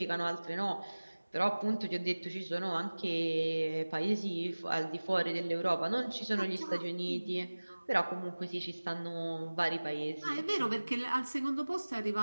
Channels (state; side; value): inverted; both; correlation -1.00